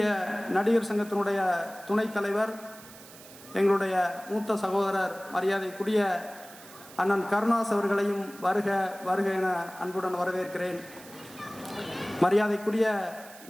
நடிகர் சங்கத்தினுடைய துணைத் தலைவர் எங்களுடைய மூத்த சகோதரர் மரியாதைக்குரிய அண்ணன் கருணாஸ் அவர்களையும் வருக வருக என அன்புடன் வரவேற்கிறேன். மரியாதைக்குரிய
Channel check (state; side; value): noise; right; hiss, 19 dB below the sound